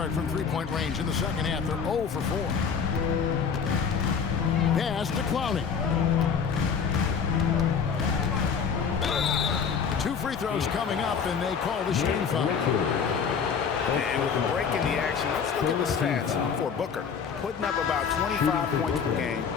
from three-point range in the second half. They're 0 for 4. Pass to Clowney. 2 free throws coming up, and they call the shooting foul. And with the break in the action, let's look at the stats for Booker. Putting up about 25 points per game,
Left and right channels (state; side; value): quieter; right; 6.5 dB